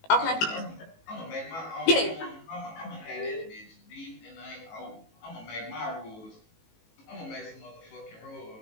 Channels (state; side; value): late; right; 18 ms